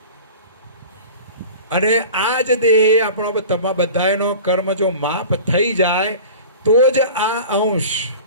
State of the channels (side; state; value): both; inverted; correlation -0.38